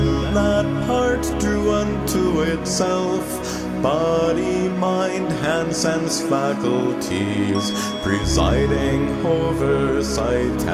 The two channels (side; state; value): both; identical; correlation 1.00